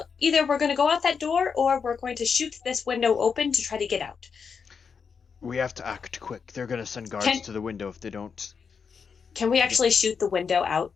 either we're going to go out that door or we're going to shoot this window open to try to get out. We have to act quick. They're going to send guards to the window if they don't. Can we actually shoot the window out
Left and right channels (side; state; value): right; quieter; 6.0 dB